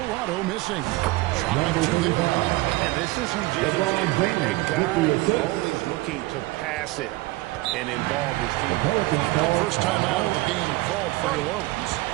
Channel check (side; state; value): left; quieter; 20.3 dB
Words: missing. Shot up to the And this is who James is. A guy who's always looking to pass it and involve his team. First time out of the game called for New Orleans.